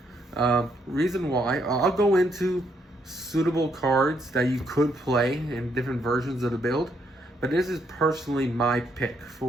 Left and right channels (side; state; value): both; normal; correlation 0.74